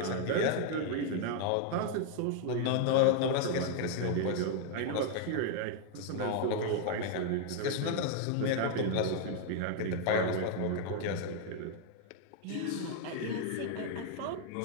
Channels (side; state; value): both; different; correlation 0.00